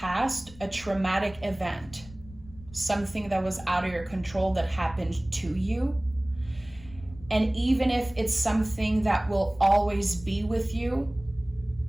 a traumatic event. Something that was out of your control that happened to you. And even if it's something that will always be with you,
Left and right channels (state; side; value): noise; left; rumble, 20 dB below the sound